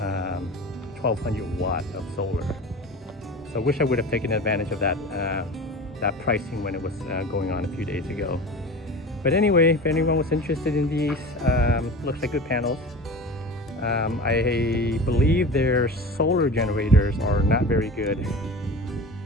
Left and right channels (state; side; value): normal; both; correlation 0.34